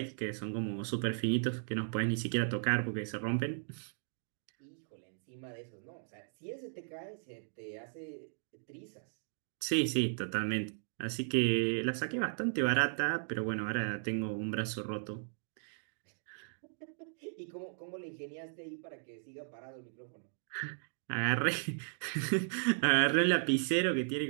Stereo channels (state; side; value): silent; left; digital silence